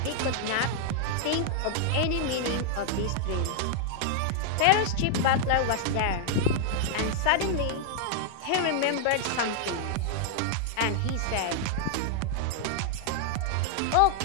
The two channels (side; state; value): both; different; correlation -0.01